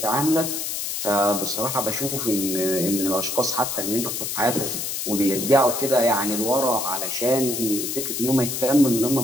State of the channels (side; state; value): left; noise; hiss, 3 dB below the sound